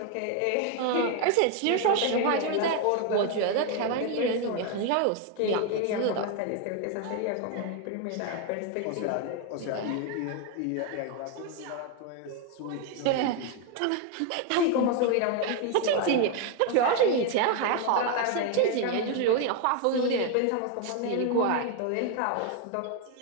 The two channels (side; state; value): both; different; correlation 0.01